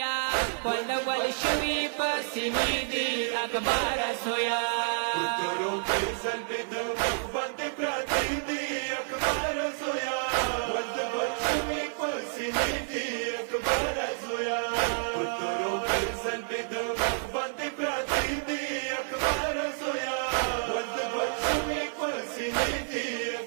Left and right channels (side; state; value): left; silent; 58 dB below the other